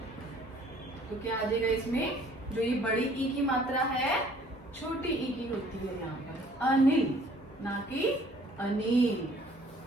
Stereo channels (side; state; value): both; normal; correlation 0.57